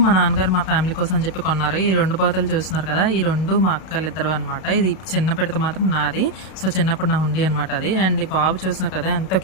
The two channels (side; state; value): right; late; 32 ms